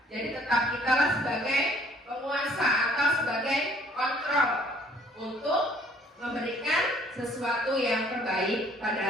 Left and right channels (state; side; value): normal; both; correlation 0.58